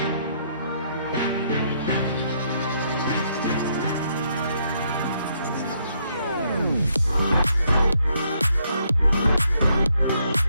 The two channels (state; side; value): inverted; both; correlation -0.72